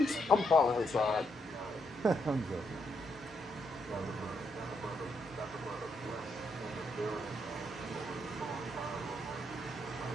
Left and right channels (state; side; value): normal; both; correlation 0.77